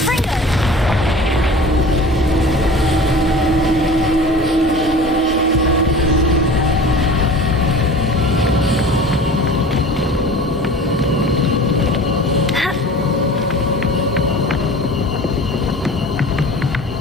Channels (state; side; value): normal; both; correlation 0.40